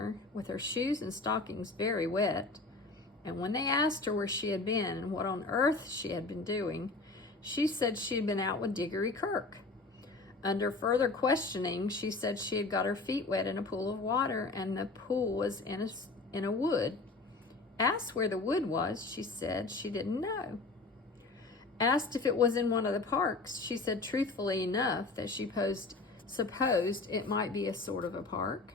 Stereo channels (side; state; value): right; quieter; 3.6 dB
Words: with her shoes and stockings very wet, and when they asked her where she had been and what on earth she had been doing, she said she had been out with Digory Kirke. Under further questioning, she said she had got her feet wet in a pool of water, and the pool was in a wood. Asked where the wood was, she said she didn't know. Asked if it was in one of the parks, she said truthfully enough that she supposed it might be a sort of a park.